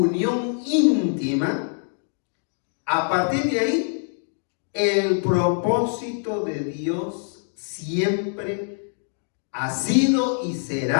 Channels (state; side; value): silent; right; digital silence